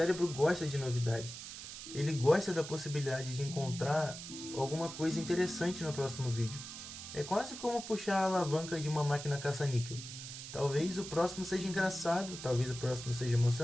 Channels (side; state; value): right; noise; hiss, 10 dB below the sound